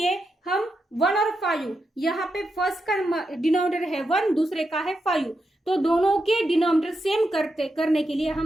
हम 1 और 5, यहाँ पे फर्स्ट का डिनोमिनेटर है 1, दूसरे का है 5, तो दोनों के डिनोमिनेटर सेम करने के लिए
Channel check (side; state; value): both; normal; correlation 0.86